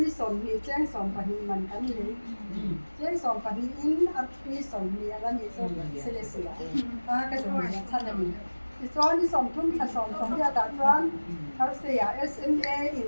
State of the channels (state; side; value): inverted; both; correlation -1.00